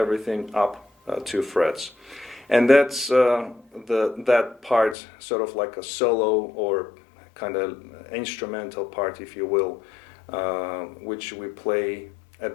up 2 frets. And that's that part, sort of like a solo or kind of instrumental part, if you will, which we play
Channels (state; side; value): drops out; right; at 5.0 s